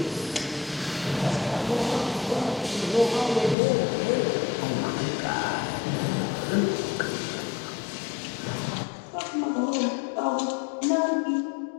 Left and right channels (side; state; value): right; drops out; at 3.6 s